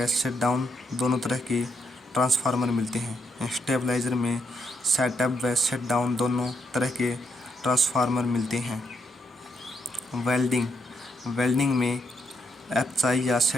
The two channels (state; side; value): normal; both; correlation 0.77